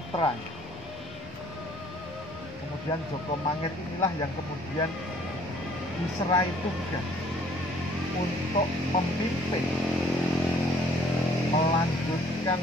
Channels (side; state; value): both; normal; correlation 0.58